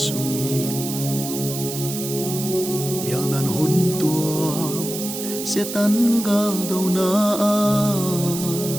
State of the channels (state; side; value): noise; right; hiss, 7 dB below the sound